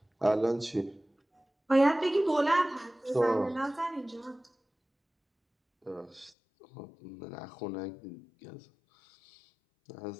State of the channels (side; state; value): right; drops out; at 6.3 s